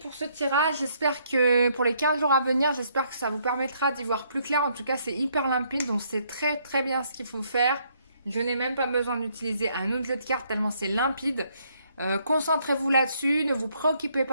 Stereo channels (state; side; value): inverted; both; correlation -0.70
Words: ce tirage, j'espère que pour les 15 jours à venir, j'espère que ça vous permettra d'y voir plus clair. En tout cas c'est hyper limpide, donc c'est très très bien ce qu'il faut faire. Je n'ai même pas besoin d'utiliser un autre jeu de cartes tellement c'est limpide. Concentrez-vous là-dessus, ne vous préoccupez